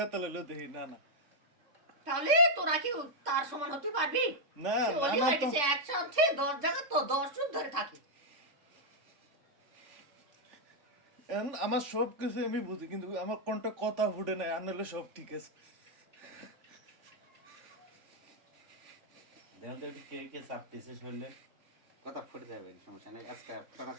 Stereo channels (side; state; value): left; late; 3.5 ms